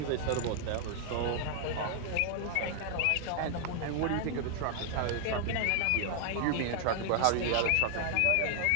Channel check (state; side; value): different; both; correlation 0.00